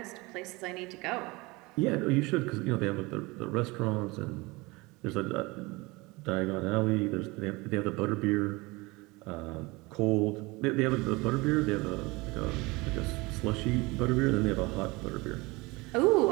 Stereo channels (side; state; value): left; quieter; 23.8 dB